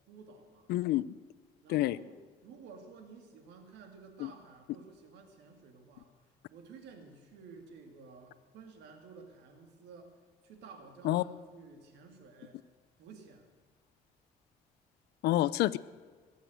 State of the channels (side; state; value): right; quieter; 13.0 dB